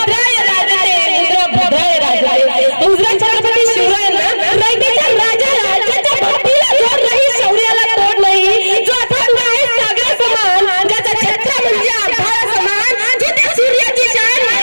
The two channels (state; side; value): inverted; both; correlation -1.00